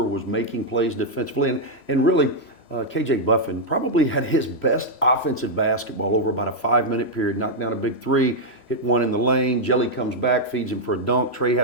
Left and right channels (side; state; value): right; late; 3.0 ms